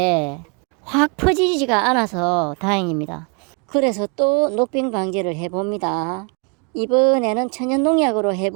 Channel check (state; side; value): quieter; left; 35.0 dB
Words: 확 퍼지지가 않아서 다행입니다. 그래서 또 녹병 방지를 해봅니다. 이번에는 천연농약으로